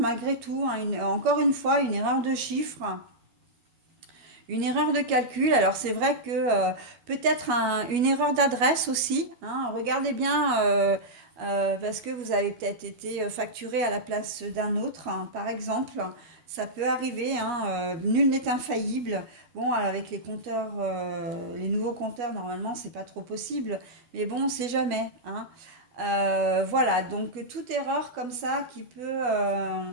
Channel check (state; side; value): late; left; 12 ms